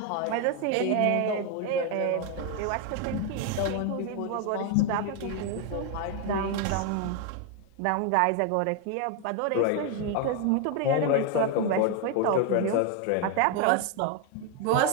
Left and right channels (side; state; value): both; different; correlation 0.01